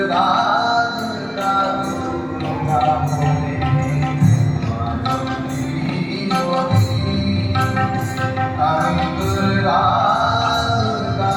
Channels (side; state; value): both; identical; correlation 1.00